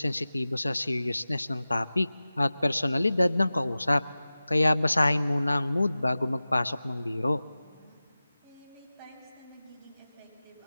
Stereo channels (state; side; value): inverted; both; correlation -0.97